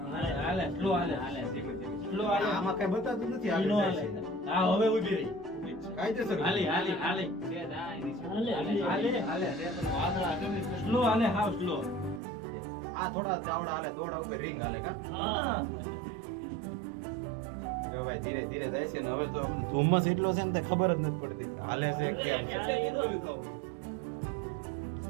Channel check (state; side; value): drops out; left; at 12.2 s